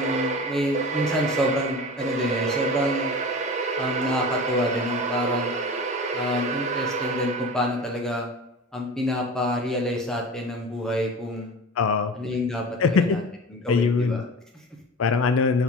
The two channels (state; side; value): normal; both; correlation 0.33